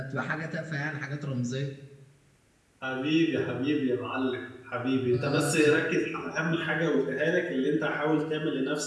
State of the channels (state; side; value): identical; both; correlation 1.00